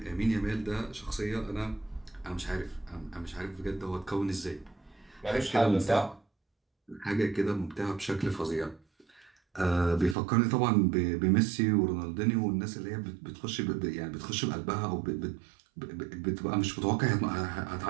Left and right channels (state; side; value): drops out; left; at 10.2 s